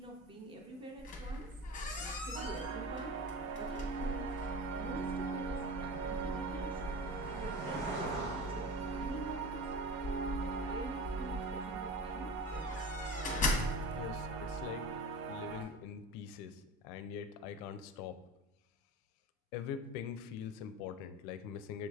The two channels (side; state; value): both; normal; correlation 0.31